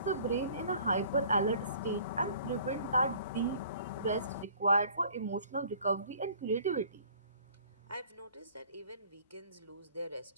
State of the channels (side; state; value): both; inverted; correlation -0.52